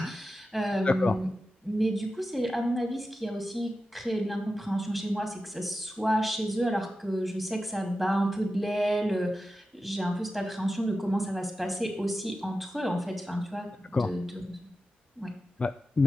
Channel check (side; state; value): both; normal; correlation 0.92